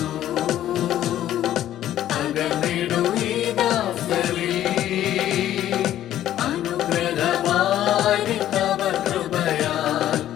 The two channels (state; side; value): quieter; right; 12.3 dB